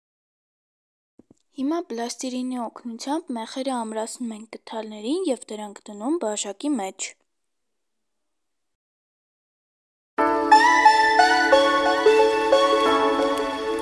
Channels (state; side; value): identical; both; correlation 1.00